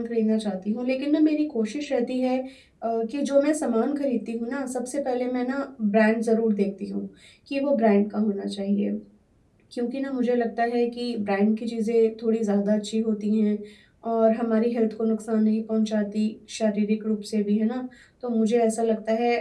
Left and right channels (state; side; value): identical; both; correlation 1.00